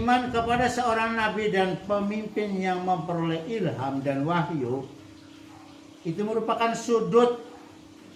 kepada seorang nabi dan pemimpin yang memperoleh ilham dan wahyu itu merupakan sudut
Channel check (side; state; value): both; identical; correlation 1.00